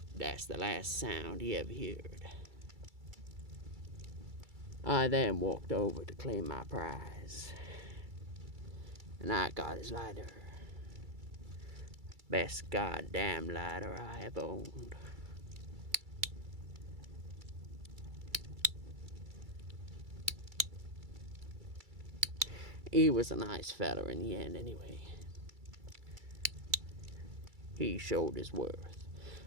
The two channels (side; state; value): left; late; 2.3 ms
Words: That's the last sound he ever heard. I then walked over to claim my prize, and I got his lighter. Best goddamn lighter I ever owned. He was a nice fella in the end anyway. He showed his worth.